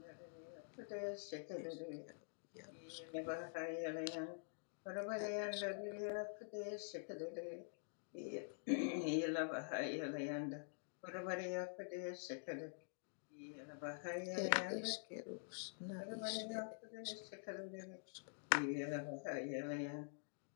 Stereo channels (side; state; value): right; silent; digital silence